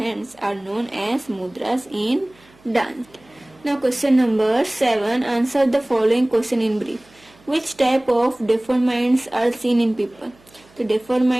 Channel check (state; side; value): noise; right; hum, 29 dB below the sound